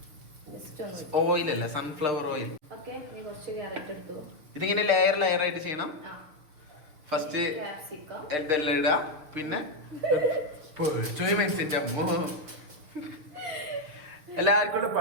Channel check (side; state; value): left; late; 6.3 ms